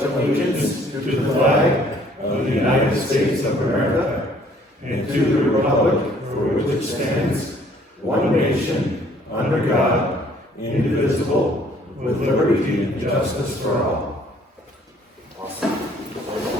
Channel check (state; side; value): normal; both; correlation 0.60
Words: allegiance to the flag of the United States of America and to the republic for which it stands, one nation, under God, indivisible, with liberty and justice for all. Awesome.